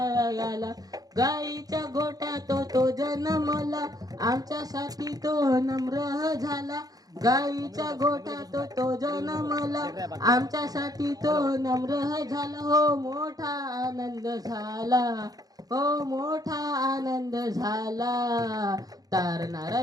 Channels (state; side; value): late; left; 0.18 ms